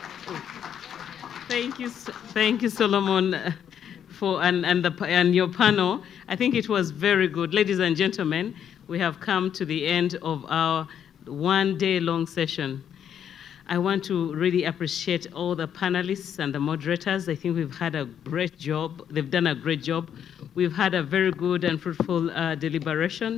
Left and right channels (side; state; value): right; quieter; 8.9 dB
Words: Thank you, Solomon, and your panel. I think it was very good. Ladies and gentlemen, we have come to the end of our one-day-long session. I want to really appreciate all the panelists and the moderators. I think we've had a great job. They've done a great job. We've had a very good and fruitful